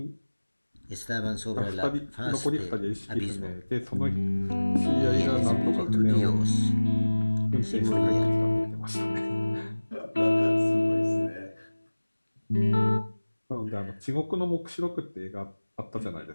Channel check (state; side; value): inverted; both; correlation -1.00